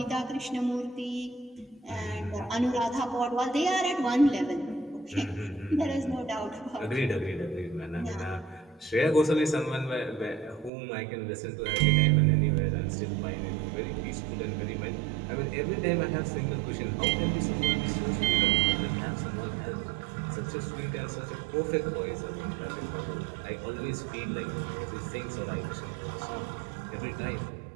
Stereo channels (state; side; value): drops out; left; at 10.7 s